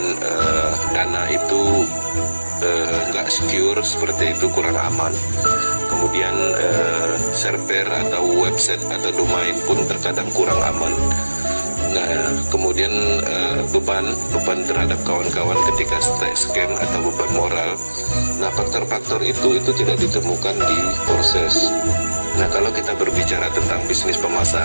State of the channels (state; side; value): inverted; both; correlation -1.00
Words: dana itu nggak secure, seperti itu, kurang aman. Kemudian server atau website atau domain pun terkadang kurang aman. Nah, kemudian beban terhadap kawan-kawan ketika scam atau beban moral. Nah, faktor-faktor itu tidak ditemukan di proses. Nah, kalau kita berbicara tentang bisnis